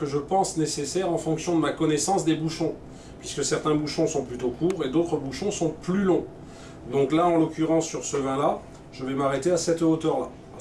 je pense nécessaire en fonction de ma connaissance des bouchons, puisque certains bouchons sont plutôt courts et d'autres bouchons sont plus longs. Donc là, en l'occurrence, sur ce vin-là, je vais m'arrêter à cette hauteur-là,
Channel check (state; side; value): identical; both; correlation 1.00